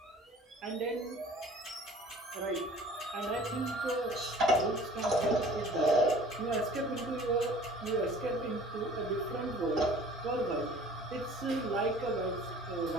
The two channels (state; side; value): normal; both; correlation 0.48